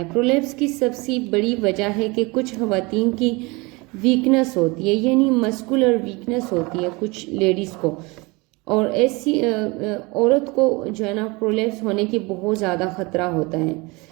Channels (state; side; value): quieter; left; 25.7 dB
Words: प्रोलैप्स की सबसे बड़ी वजह है कि कुछ खवातीन की वीकनेस होती है, यानी मस्कुलर वीकनेस होती है कुछ लेडीज़ को, और ऐसी औरत को जो है ना प्रोलैप्स होने की बहुत ज़्यादा ख़तरा होता है।